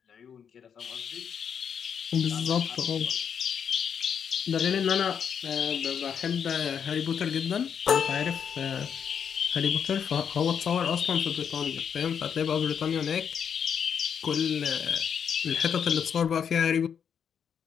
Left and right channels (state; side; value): quieter; right; 7.5 dB